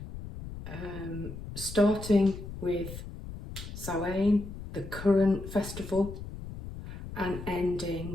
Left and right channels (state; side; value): noise; left; rumble, 10 dB below the sound